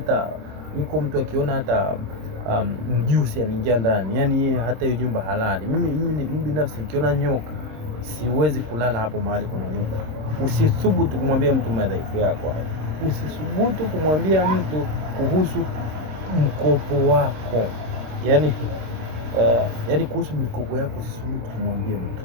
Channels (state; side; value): late; left; 26 ms